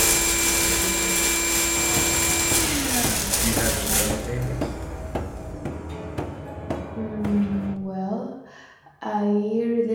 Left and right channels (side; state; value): both; identical; correlation 1.00